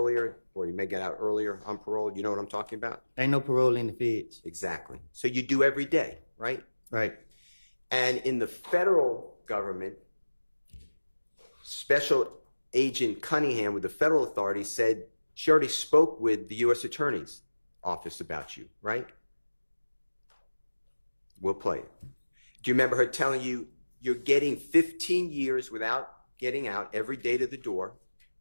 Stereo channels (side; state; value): both; inverted; correlation -1.00